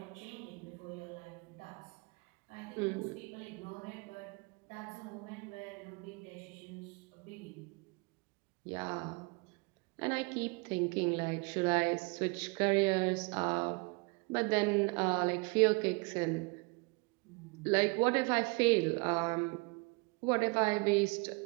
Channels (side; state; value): left; quieter; 30.3 dB